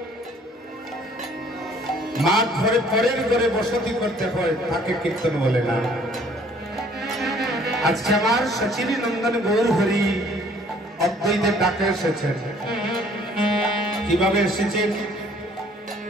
মা ঘরে পরের ঘরে বসতি করতে হয় তাকে কীর্তন বলে না। আজকে আমার সচিনী নন্দন গৌর হরি অদ্বৈতের ডাকে এসেছেন। কিভাবে এসেছেন?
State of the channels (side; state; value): both; normal; correlation 0.58